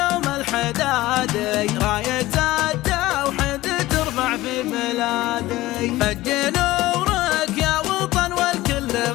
الحدادي، راية التوحيد ترفع في بلادي. فج نورك يا وطن والكل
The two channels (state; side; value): quieter; right; 17.5 dB